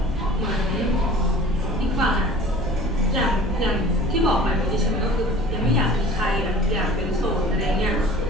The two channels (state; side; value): normal; both; correlation 0.44